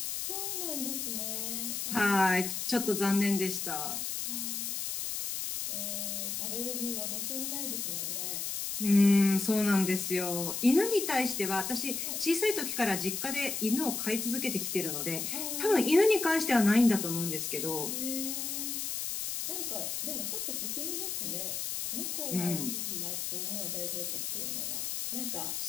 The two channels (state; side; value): noise; left; hiss, 3 dB below the sound